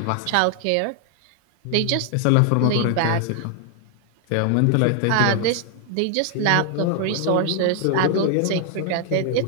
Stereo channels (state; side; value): different; both; correlation 0.00